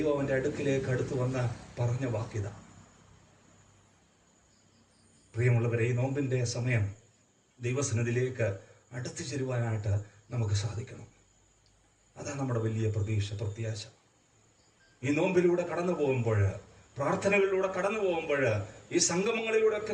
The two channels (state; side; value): identical; both; correlation 1.00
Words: അവന്റെ അടുക്കിലേക്ക് അടുത്ത് വന്ന് പറഞ്ഞ വാക്യത. പ്രിയമുള്ളവരെ, ഈ നോമ്പിന്റെ സമയം ദൈവസന്നിധിയിലേക്ക് അടുത്തു ചേരുവാനായിട്ട് നമുക്ക് സാധിക്കണം. അതാണ് നമ്മുടെ വലിയ പ്രത്യാശ. ഈ നോമ്പിലൂടെ കടന്നു പോകുമ്പോൾ, പ്രാർത്ഥനകളിലൂടെ കടന്നു പോകുമ്പോൾ, ഈ സംഗമങ്ങളിലൂടെ